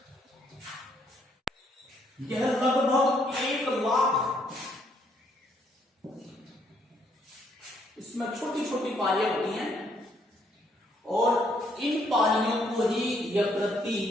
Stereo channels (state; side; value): normal; both; correlation 0.70